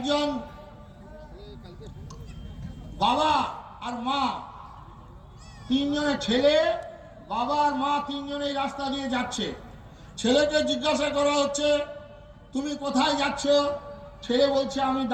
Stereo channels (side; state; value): both; identical; correlation 1.00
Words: বাবা আর মা, তিনজনের ছেলে, বাবা আর মা তিনজনেই রাস্তা দিয়ে যাচ্ছে। ছেলেকে জিজ্ঞাসা করা হচ্ছে তুমি কোথায় যাচ্ছ? ছেলে বলছে আমি